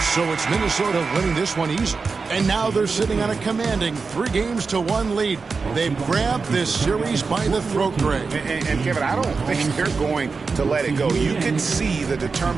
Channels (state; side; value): quieter; left; 4.6 dB